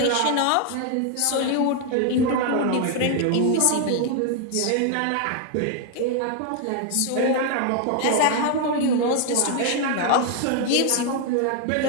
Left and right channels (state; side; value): different; both; correlation 0.00